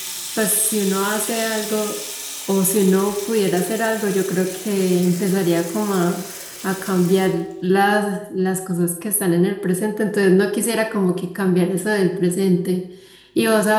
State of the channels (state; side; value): identical; both; correlation 1.00